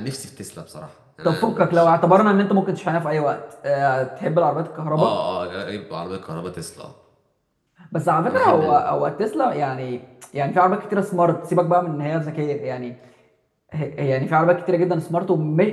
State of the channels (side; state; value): both; identical; correlation 1.00